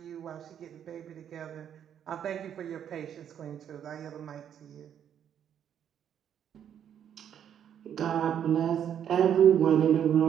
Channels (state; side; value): quieter; left; 9.2 dB